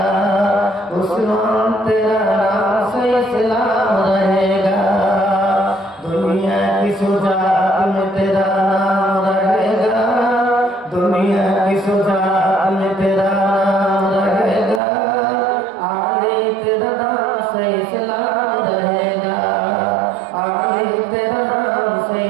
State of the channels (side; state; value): left; drops out; at 14.8 s